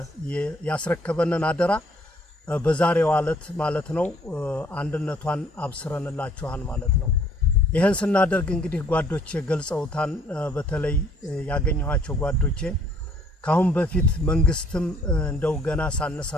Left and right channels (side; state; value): both; normal; correlation 0.61